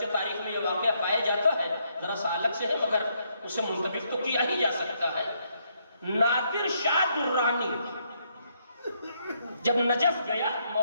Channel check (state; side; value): inverted; both; correlation -0.74